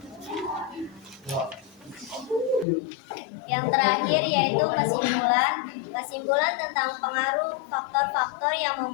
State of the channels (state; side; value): drops out; right; at 2.7 s